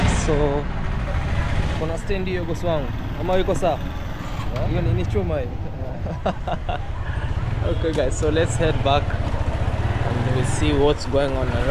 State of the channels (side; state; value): both; identical; correlation 1.00